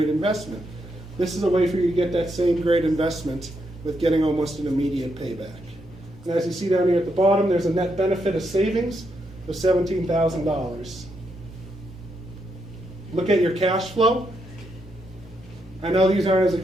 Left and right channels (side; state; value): both; normal; correlation 0.80